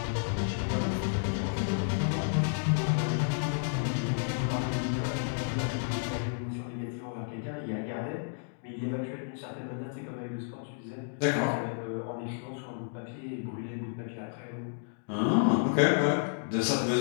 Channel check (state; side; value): silent; right; digital silence